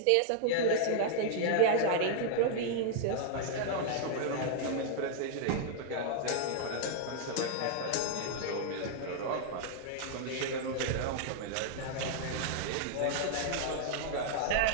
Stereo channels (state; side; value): different; both; correlation -0.01